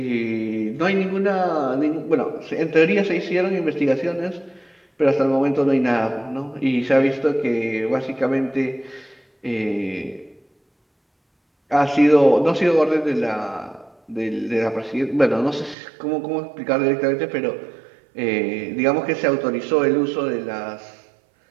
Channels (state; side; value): drops out; left; at 15.8 s